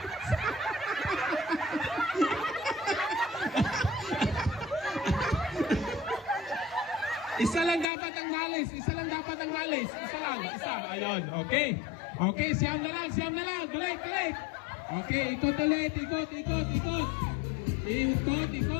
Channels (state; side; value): drops out; right; at 7.9 s